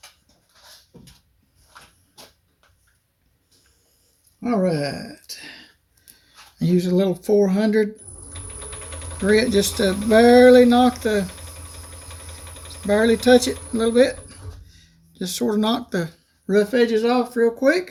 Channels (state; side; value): identical; both; correlation 1.00